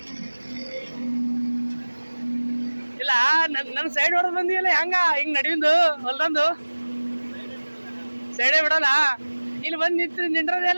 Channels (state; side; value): inverted; both; correlation -1.00